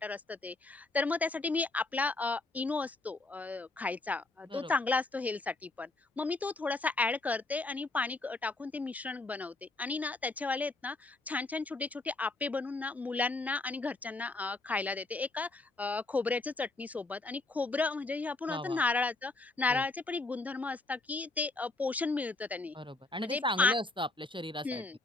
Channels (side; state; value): right; quieter; 3.2 dB